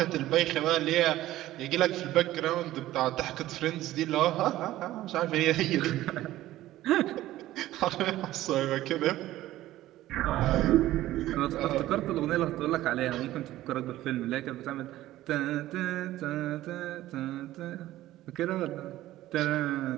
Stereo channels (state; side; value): quieter; left; 15.1 dB